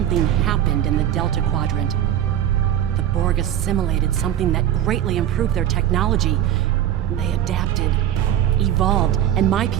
happened in the Delta Quadrant. The Borg assimilated something that greatly improved their technology. They adapted, evolved, and my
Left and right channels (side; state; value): left; quieter; 11.1 dB